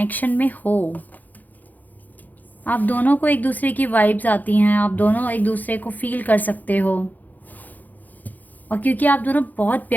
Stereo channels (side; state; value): right; late; 0.082 ms